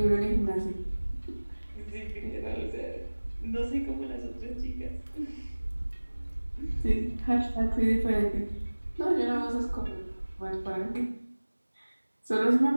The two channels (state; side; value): inverted; both; correlation -1.00